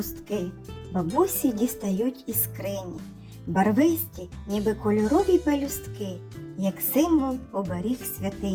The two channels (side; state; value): both; identical; correlation 1.00